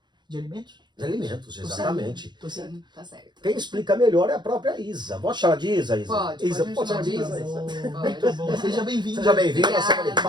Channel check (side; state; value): left; late; 0.21 ms